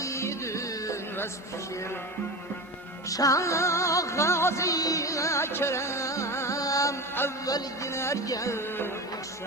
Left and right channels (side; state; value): both; normal; correlation 0.25